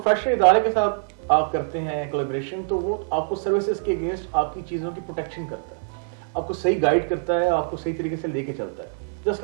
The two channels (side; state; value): left; silent; digital silence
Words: ادارے کے ساتھ آپ کرتے ہیں کولیبریشن, تو وہ آپ کو سروسز کے اگینسٹ آپ کی چیزوں کی پروٹیکشن کرتا ہے, آپ کو صحیح گائیڈ کرتا ہے, آپ کو صحیح طریقے سے لے کے چلتا ہے, just